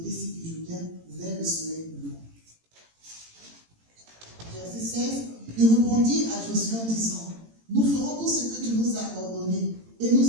du Jourdain vers le soleil levant. Verset 16. Il répondit à Josué en disant, nous ferons tout ce que tu nous as ordonné et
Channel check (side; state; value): left; late; 18 ms